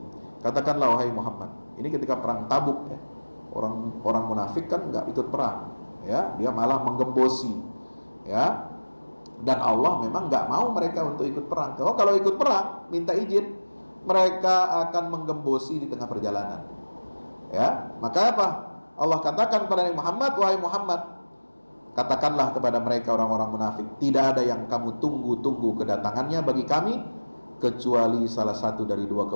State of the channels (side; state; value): both; inverted; correlation -1.00